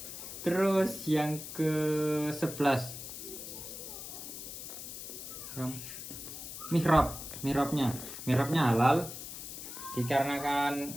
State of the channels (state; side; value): noise; left; hiss, 9 dB below the sound